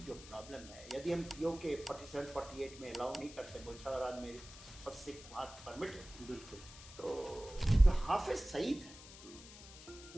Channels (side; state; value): left; noise; hiss, 16 dB below the sound